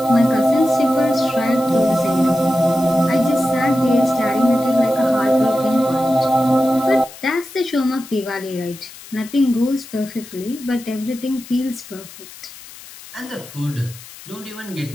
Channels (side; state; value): left; noise; hiss, 17 dB below the sound